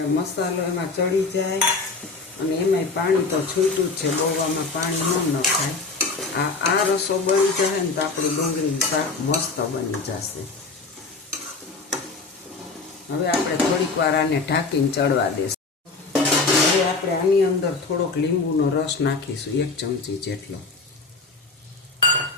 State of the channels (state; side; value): quieter; right; 4.0 dB